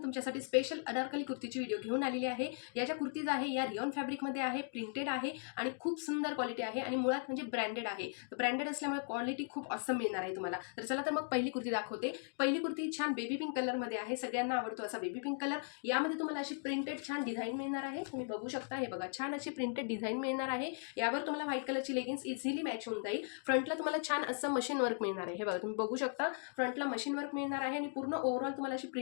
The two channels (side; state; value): right; silent; 53 dB below the other